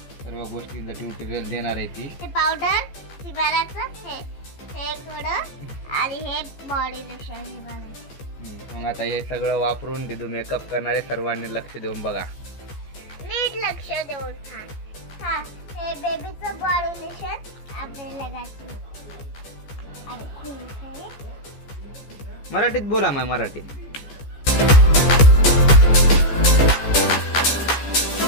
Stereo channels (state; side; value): late; right; 14 ms